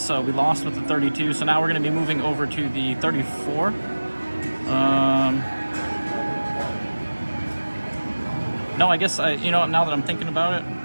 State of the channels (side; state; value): both; inverted; correlation -1.00